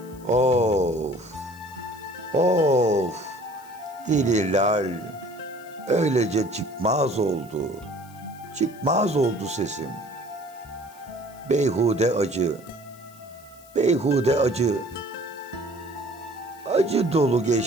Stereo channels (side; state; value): left; noise; hiss, 24 dB below the sound